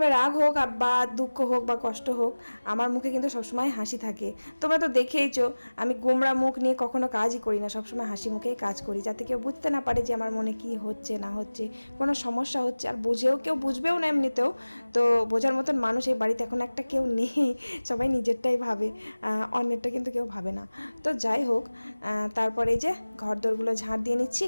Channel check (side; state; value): both; inverted; correlation -1.00